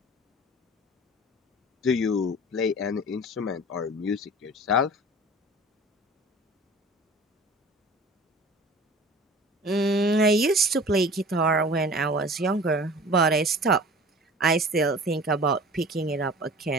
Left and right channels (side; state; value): both; normal; correlation 0.42